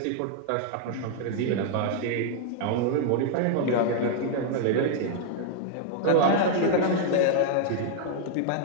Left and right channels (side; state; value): both; different; correlation -0.01